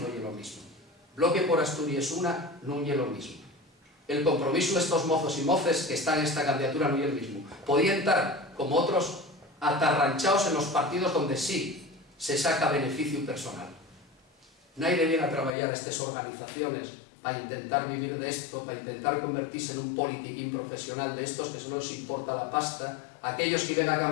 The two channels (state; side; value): drops out; right; at 15.5 s